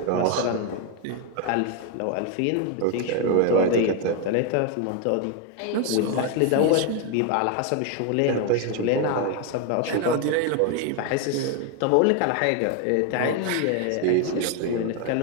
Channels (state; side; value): different; both; correlation 0.01